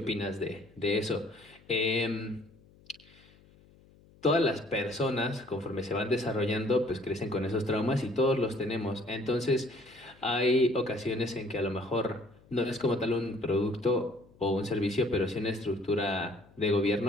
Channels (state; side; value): noise; left; hum, 27 dB below the sound